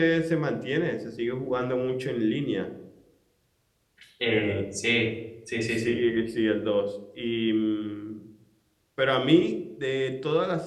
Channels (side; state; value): both; identical; correlation 1.00